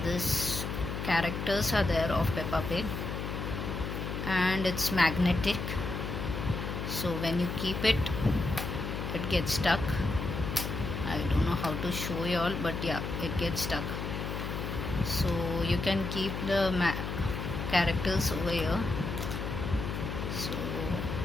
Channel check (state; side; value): noise; left; hum, 4 dB below the sound